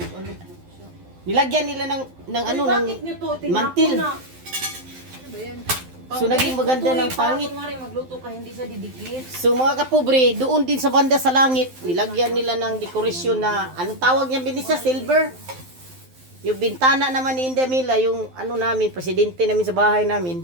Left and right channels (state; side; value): late; left; 12 ms